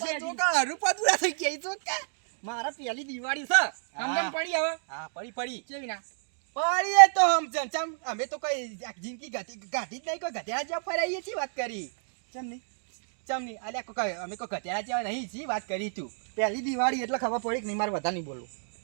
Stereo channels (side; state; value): left; silent; digital silence